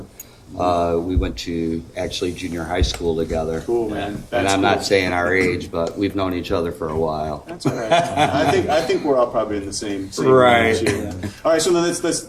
We went to actually junior high school together. Cool, man. And That's I'm cool. not saying our age, but we've known each other for a while. That's all right. I think we're all probably in the same Right. range here. All right, so then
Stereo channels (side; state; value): both; identical; correlation 1.00